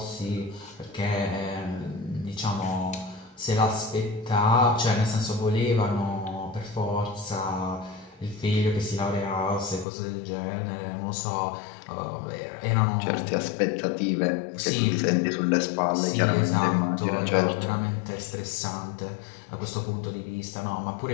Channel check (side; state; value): right; drops out; at 9.9 s